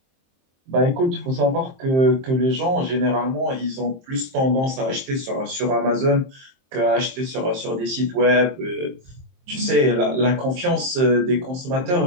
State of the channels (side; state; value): left; late; 23 ms